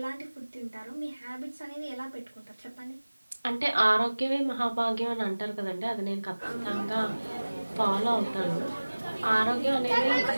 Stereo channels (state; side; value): inverted; both; correlation -1.00